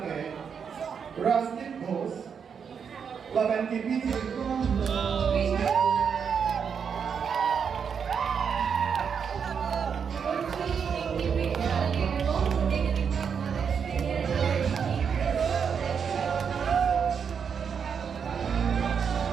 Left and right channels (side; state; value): left; quieter; 6.8 dB